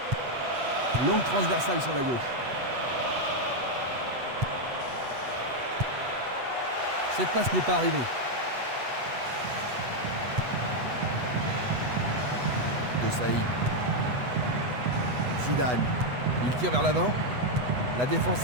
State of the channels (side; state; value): left; late; 8.1 ms